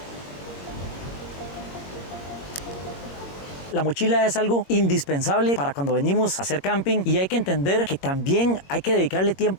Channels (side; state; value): right; late; 21 ms